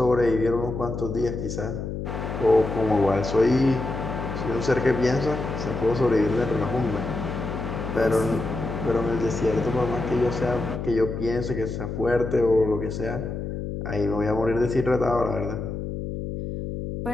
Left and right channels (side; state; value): left; noise; hum, 5 dB below the sound